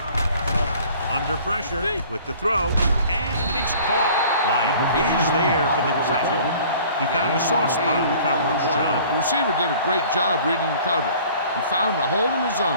Under pressure with the throw. And it's caught. Lyon is there for the tackle. He found a soft spot in the coverage, John. The receiver did a great job reading the coverage. He found a hole in the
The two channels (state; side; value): inverted; both; correlation -0.50